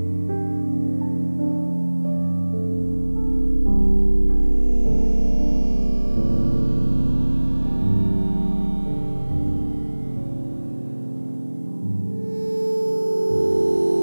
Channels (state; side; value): inverted; both; correlation -1.00